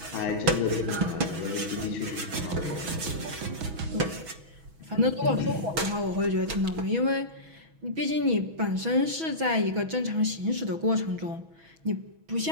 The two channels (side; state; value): left; late; 6.1 ms